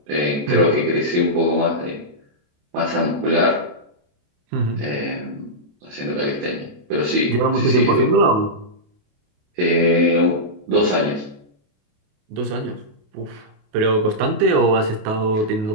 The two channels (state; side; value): late; left; 28 ms